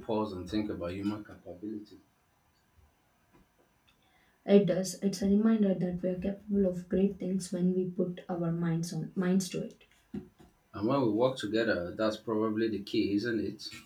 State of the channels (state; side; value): identical; both; correlation 1.00